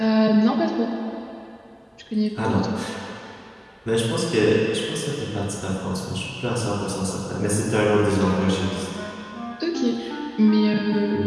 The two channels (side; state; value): both; identical; correlation 1.00